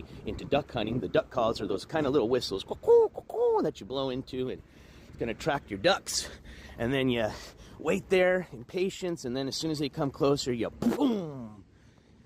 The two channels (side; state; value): both; identical; correlation 1.00